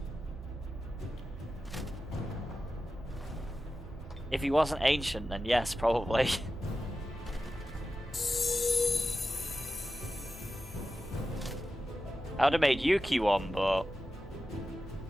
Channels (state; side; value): normal; both; correlation 0.92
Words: If he wasn't ancient, then yes, probably. I would have made Yuki one, but...